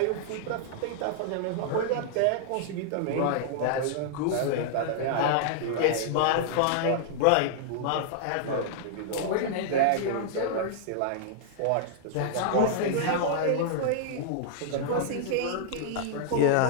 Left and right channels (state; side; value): different; both; correlation -0.01